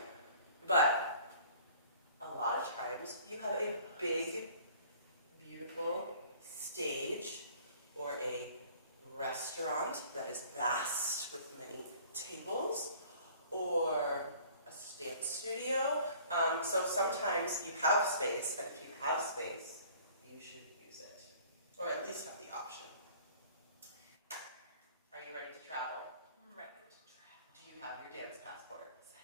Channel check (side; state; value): both; inverted; correlation -0.51